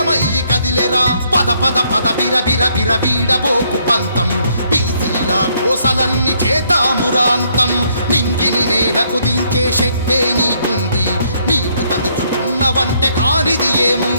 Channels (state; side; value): inverted; both; correlation -0.70